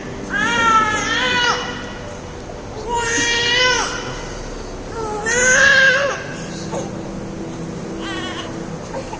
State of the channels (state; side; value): identical; both; correlation 1.00